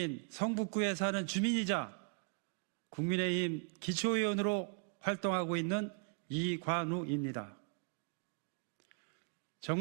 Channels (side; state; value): left; quieter; 36.8 dB